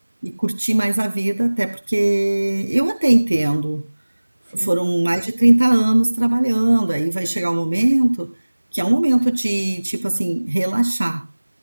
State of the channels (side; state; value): both; inverted; correlation -1.00